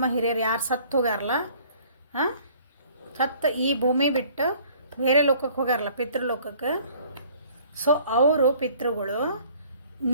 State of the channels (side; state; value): both; inverted; correlation -0.55